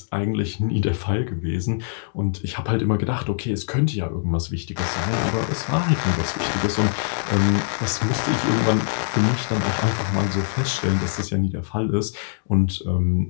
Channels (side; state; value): right; silent; digital silence